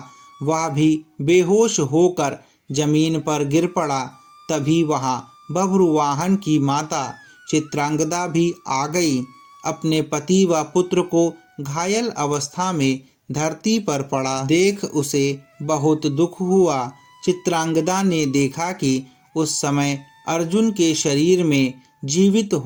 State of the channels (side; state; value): both; identical; correlation 1.00